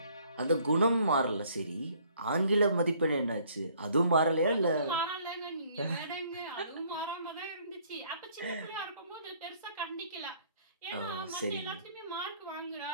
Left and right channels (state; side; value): inverted; both; correlation -0.61